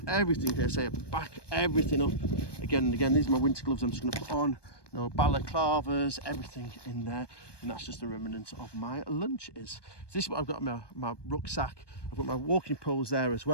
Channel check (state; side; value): late; right; 1.2 ms